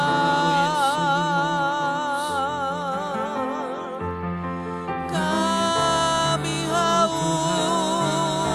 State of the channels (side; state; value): both; identical; correlation 1.00